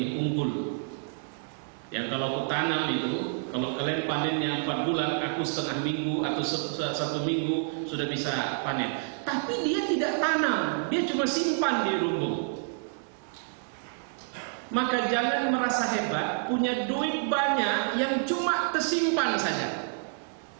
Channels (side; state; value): left; silent; digital silence